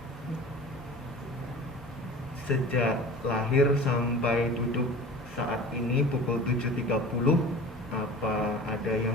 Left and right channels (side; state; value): both; normal; correlation 0.39